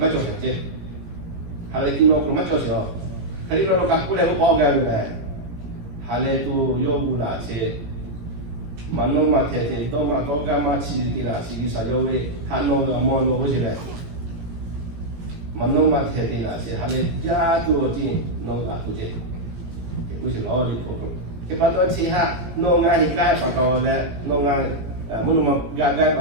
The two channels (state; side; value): late; left; 17 ms